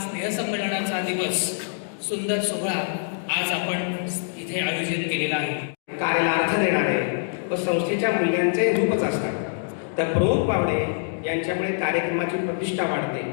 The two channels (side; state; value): right; silent; digital silence